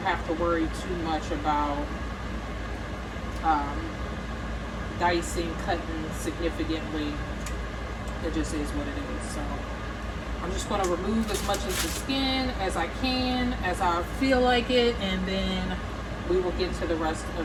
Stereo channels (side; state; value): both; identical; correlation 1.00